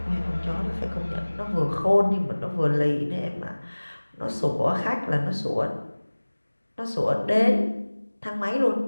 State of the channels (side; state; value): both; inverted; correlation -1.00